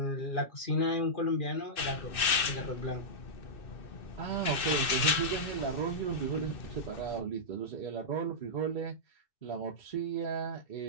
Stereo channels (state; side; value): late; right; 2.6 ms